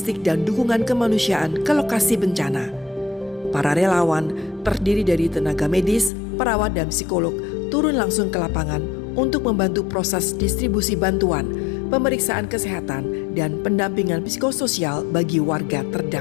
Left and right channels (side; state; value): right; drops out; at 6.1 s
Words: dan dukungan kemanusiaan ke lokasi bencana. Para relawan terdiri dari tenaga medis, perawat, dan psikolog turun langsung ke lapangan untuk membantu proses distribusi bantuan, pemeriksaan kesehatan, dan pendampingan psikososial bagi warga